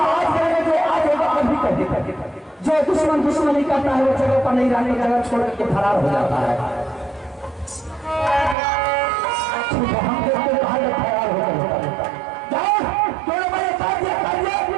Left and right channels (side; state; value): left; drops out; at 8.6 s